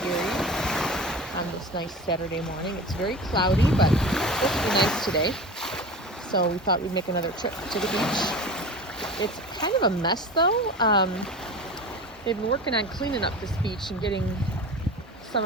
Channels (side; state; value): both; normal; correlation 0.33